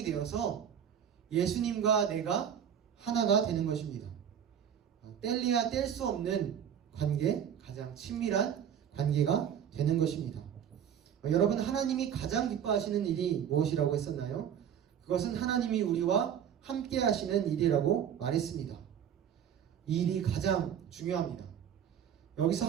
되어서 예수님과 내가 하나가 되는 것입니다. 뗄래야 뗄 수 없는 관계, 가장 친밀한 관계가 되는 것입니다. 여러분 하나님이 가장 기뻐하시는 일이 무엇이라고 했었나요? 그것은 하나님이 우리와 함께 하시는 일이라고 말했습니다. 이 일이 가장 중요합니다. 여기서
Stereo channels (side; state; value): left; quieter; 8.8 dB